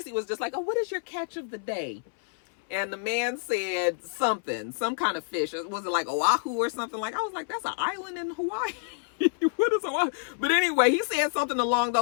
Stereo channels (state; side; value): silent; right; 59 dB below the other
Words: was just like, oh, what is your catch of the day? And the man said something, some kind of fish. Was it like Oahu or something? Like, I was like, that's an island in Hawaii. What is Oahu? But anyway, he said something along